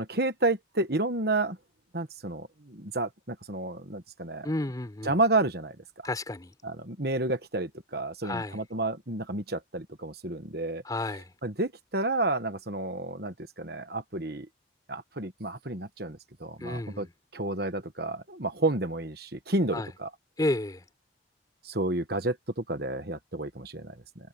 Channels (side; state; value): both; normal; correlation 0.06